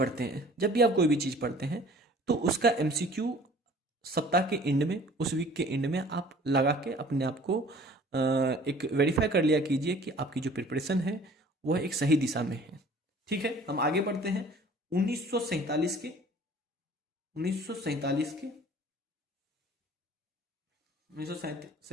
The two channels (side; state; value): both; normal; correlation 0.50